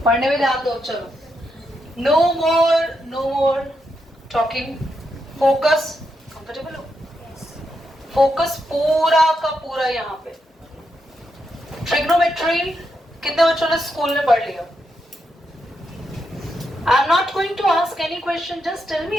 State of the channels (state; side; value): normal; both; correlation 0.82